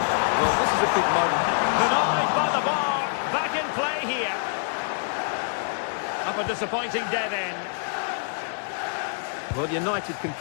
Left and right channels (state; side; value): silent; right; digital silence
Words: Well, this is a big moment. Denied by the bar. Back in play here. Up a disappointing dead end. Well, United can